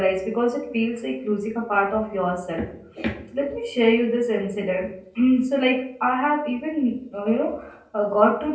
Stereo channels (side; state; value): both; identical; correlation 1.00